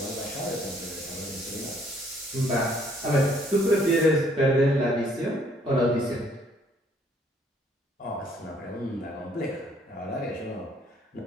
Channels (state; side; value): normal; both; correlation 0.64